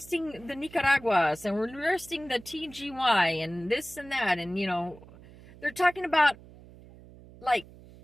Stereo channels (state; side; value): noise; right; hum, 21 dB below the sound